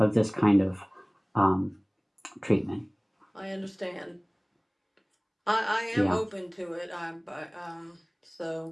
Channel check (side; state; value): both; identical; correlation 1.00